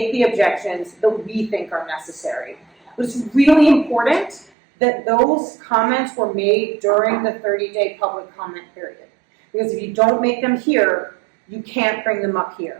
the objections that we think are necessary. But it's really important that those comments were made during the 30-day public comment period. Because if you don't make them here, you can't bring them up here.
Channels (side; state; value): left; drops out; at 4.5 s